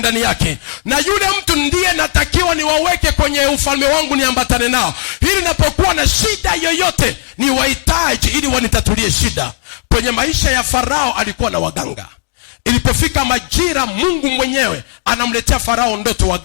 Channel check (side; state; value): right; silent; digital silence